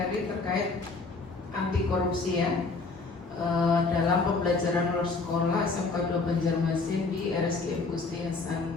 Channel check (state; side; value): quieter; right; 4.0 dB